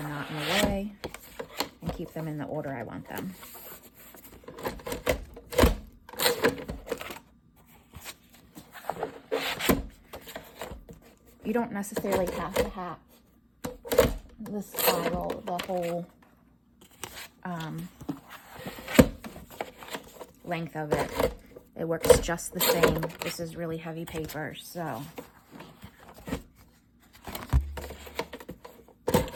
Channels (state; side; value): identical; both; correlation 1.00